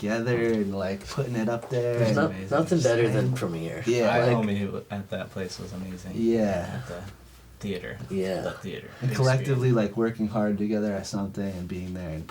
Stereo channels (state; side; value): identical; both; correlation 1.00